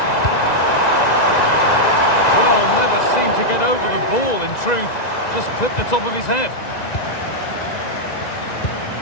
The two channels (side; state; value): right; late; 1.9 ms